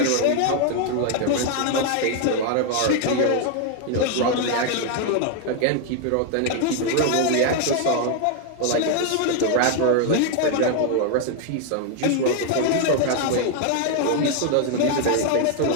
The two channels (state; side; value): different; both; correlation 0.01